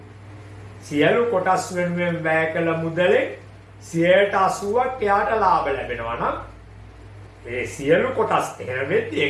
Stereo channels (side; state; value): both; identical; correlation 1.00